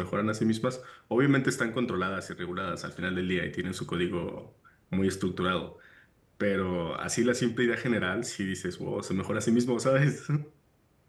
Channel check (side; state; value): both; identical; correlation 1.00